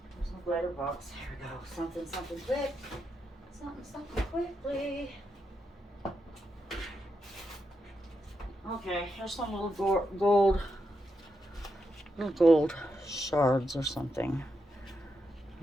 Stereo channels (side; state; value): both; normal; correlation 0.84